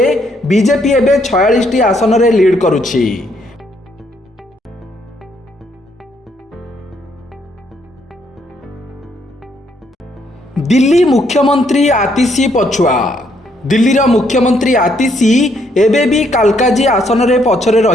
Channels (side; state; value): both; normal; correlation 0.71